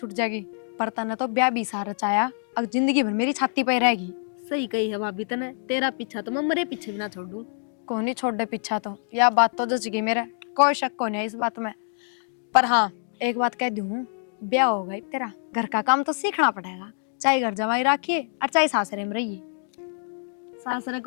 जाएगी। पर तने तो ब्याह भी सारा चाया, अब जिंदगी भर मेरी छाती पे रहेगी। सही कही है भाभी तने, तेरा पीछा तो मैं मरे पीछे भी ना छोड़ दूं। कौन नहीं छोड़ दे पीछा, तो यह बात तो जच गई मेरे, कोई शक को नहीं है इस बात में। पर हाँ एक बात कह दूं, ब्याह हो गई तेरा, घर का काम तो सीखना पड़ेगा, चाहे घर जमाई रखिए और चाहे सासरे में रहिए। सासरे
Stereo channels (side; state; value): right; silent; digital silence